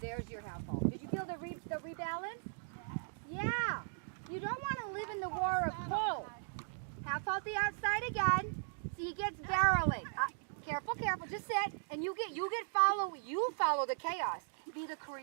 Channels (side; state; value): left; silent; digital silence